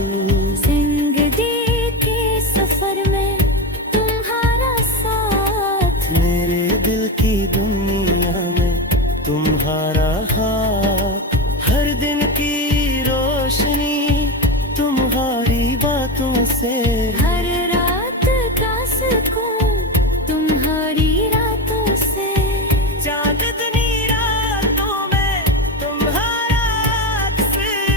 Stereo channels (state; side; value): normal; both; correlation 0.18